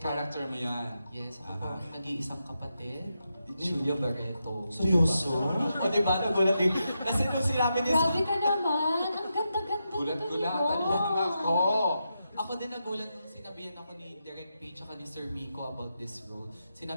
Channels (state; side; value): inverted; both; correlation -0.86